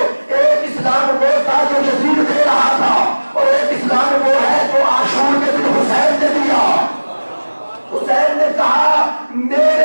اسلام وہ تھا جو یزید دے رہا تھا اور ایک اسلام وہ ہے جو عاشور کے دن حسین نے دیا. حسین نے کہا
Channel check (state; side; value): inverted; both; correlation -1.00